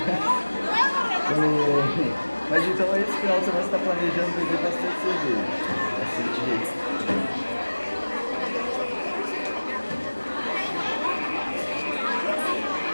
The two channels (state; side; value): inverted; both; correlation -1.00